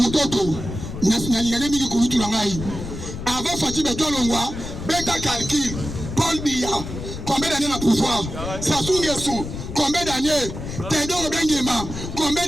Nationalité Mili Koulitou Langaï. Avant Fatibé Ton Longwa, Beta Calcul, Paul Biya, combien d'années dans le pouvoir? Sassou Nguesso, combien d'années? Théodore Benguema, combien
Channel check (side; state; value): left; noise; rumble, 8 dB below the sound